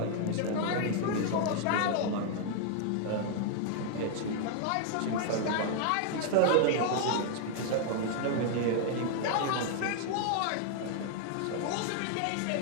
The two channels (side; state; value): both; different; correlation 0.00